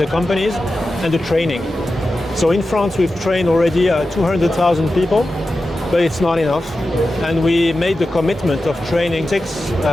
companies and the training. So in France, we've trained already 200,000 people, but it's not enough. And we made the commitment of training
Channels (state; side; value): normal; both; correlation 0.92